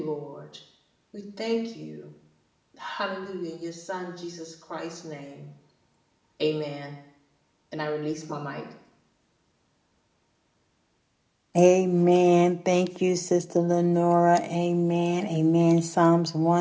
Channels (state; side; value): identical; both; correlation 1.00